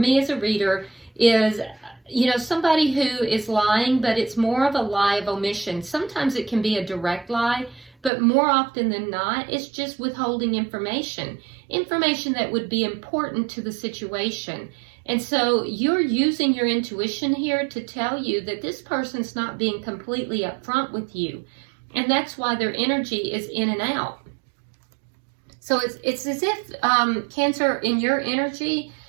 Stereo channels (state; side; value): drops out; left; at 8.1 s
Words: as a reader, is, you know, somebody who is lying, but it's more of a lie of omission. Sometimes it can be a direct lie, but more often than not, it's just withholding information. Information that would be important to the situation. And so you're using your intuition here to tell you that this person's not being completely upfront with you. And that's why their energy is in and out. So it's as if, Cancer, in your energy,